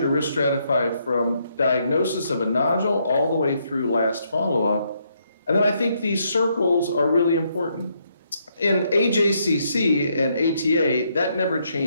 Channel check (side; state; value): both; inverted; correlation -0.74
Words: risk stratify from diagnosis of a nodule all the way through last follow-up. And then I think these circles are really important. In AJCC and ATA, that never